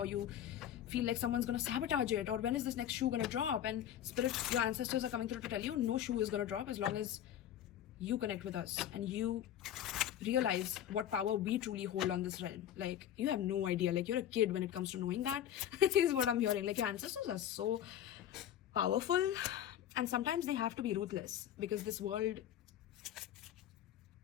you feel like someone's gonna sabotage it, or when is this next shoe gonna drop? And spirit, your ancestors are coming through to tell you no shoe is gonna drop as long as you connect with us and you realize what power we truly hold on this realm. Like, you have no idea. Like, you're a kid when it comes to knowing that. Is what I'm hearing. Like, your ancestors are so powerful, And sometimes they have to be ruthless, because this world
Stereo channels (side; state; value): right; quieter; 10.8 dB